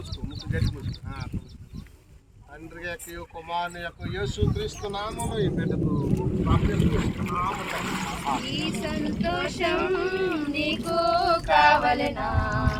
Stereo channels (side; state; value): both; identical; correlation 1.00